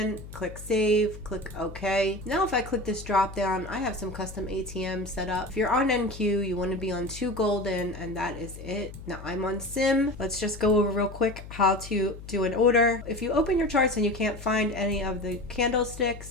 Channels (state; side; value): noise; left; hum, 14 dB below the sound